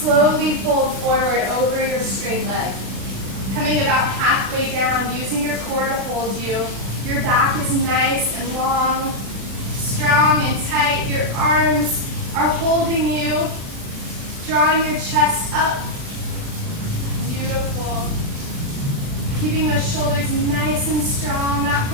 fold forward over your straight leg. Coming about halfway down, using your core to hold you. Your back is nice and long, strong and tight. Your arms are holding you, drawing your chest up. Beautiful. Keeping those shoulders nice and strong, not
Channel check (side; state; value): left; late; 36 ms